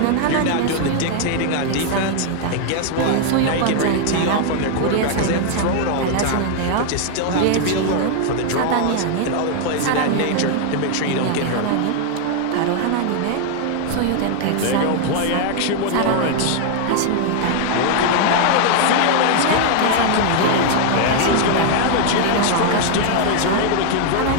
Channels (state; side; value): different; both; correlation 0.00